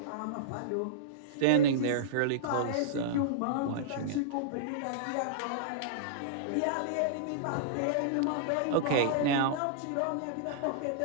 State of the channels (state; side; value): different; both; correlation -0.03